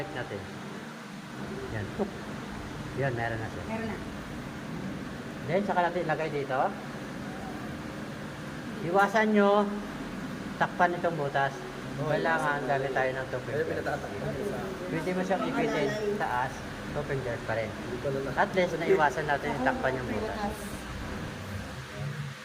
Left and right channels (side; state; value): both; identical; correlation 1.00